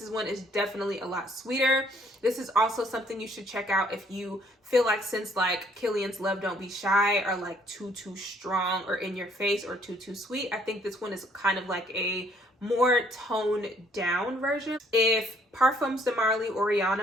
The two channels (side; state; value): both; normal; correlation 0.64